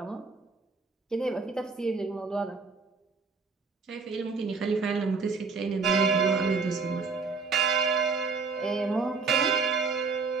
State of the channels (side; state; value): left; quieter; 4.5 dB